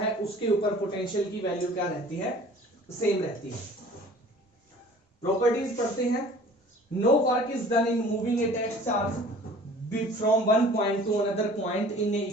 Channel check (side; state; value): both; normal; correlation 0.48